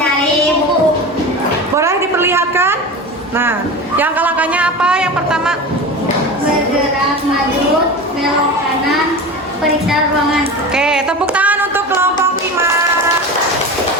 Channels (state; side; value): normal; both; correlation 0.29